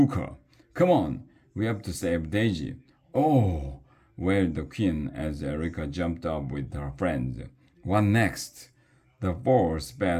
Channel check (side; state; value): both; identical; correlation 1.00